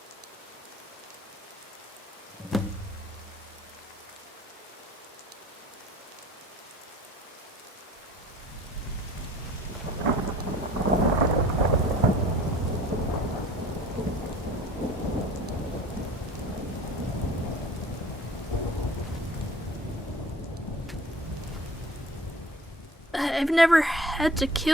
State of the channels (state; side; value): normal; both; correlation 0.47